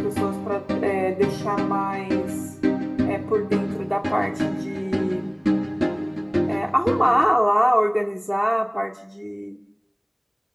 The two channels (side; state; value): both; identical; correlation 1.00